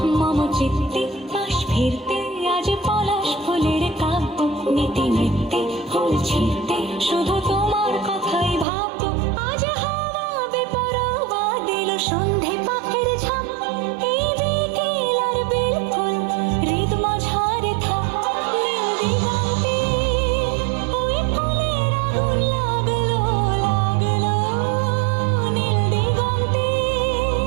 মম চিত্তে পাশ ফিরতে আজ পলাশ ফুলের কাব্য, নীতি নৃত্যে ফুল ছিঁড়তে শুধু তোমার কথাই ভাববো। আজ হাওয়া বেপরোয়া দিল সন্ধে পাখির ঝাঁপ, এই বিকেল আর বেলফুল হৃদ মাঝারে থাক। নীল দিগন্তে ওই ফুলের আগুন লাগলো লাগলো, নীল দিগন্তে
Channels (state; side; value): drops out; left; at 8.7 s